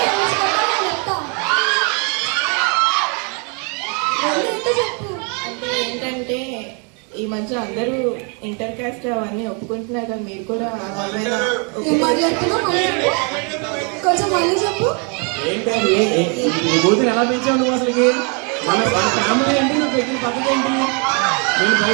ఏంటంటే ఈ మధ్య అందరూ ఇంటర్ కాస్ట్ అవన్నీ ఒప్పుకుంటున్నారు కదా. మీరు కూడా కొంచెం మళ్ళీ చెప్పు. ఏంటండి ఈ కూతురు ఎలా పెంచావు నువ్వు? అసలుకి మన ఫ్యామిలీ ఏంటి? నువ్వు పెట్టిన పద్ధతి ఏంటి? నేను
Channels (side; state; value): left; quieter; 35.8 dB